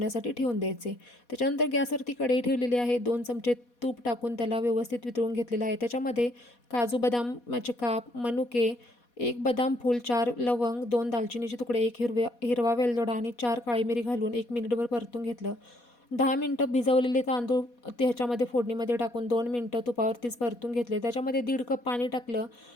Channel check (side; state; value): right; late; 4.2 ms